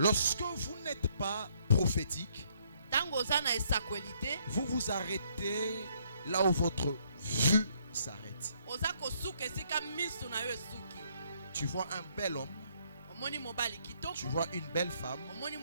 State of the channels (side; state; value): both; inverted; correlation -0.68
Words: vous n'êtes pas prophétique, vous vous arrêtez là où votre vue s'arrête. Tu vois un bel homme, tu vois une belle femme,